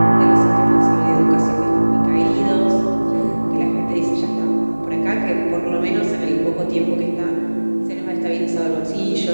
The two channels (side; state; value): both; inverted; correlation -1.00